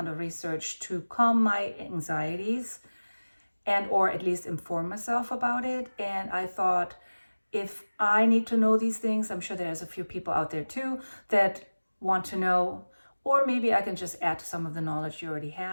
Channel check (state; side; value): inverted; both; correlation -1.00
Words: of research to calm my anxieties and or at least inform myself about it. And I thought, if I need to know these things, I'm sure there's a few people out there too that want to know, or maybe I can just add to some of the knowledge you already